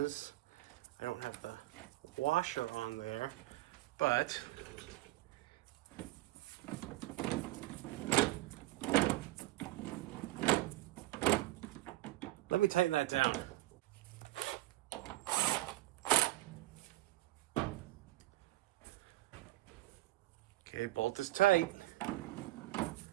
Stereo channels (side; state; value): left; quieter; 17.8 dB